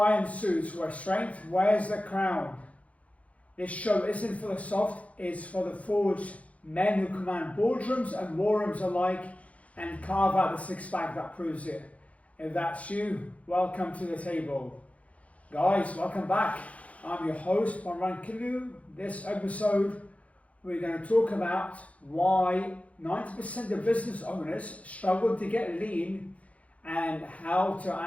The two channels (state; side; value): late; right; 0.066 ms